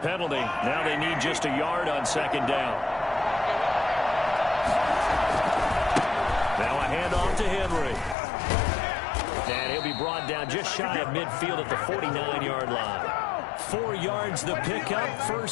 now they need just a yard on 2nd down. Now a handoff to Henry. And he'll be brought down just shy of midfield at the 49-yard line. 4 yards the pickup,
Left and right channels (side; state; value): right; drops out; at 8.2 s